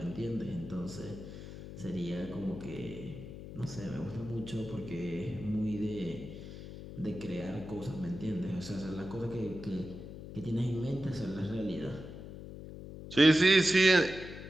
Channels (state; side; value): noise; left; hum, 11 dB below the sound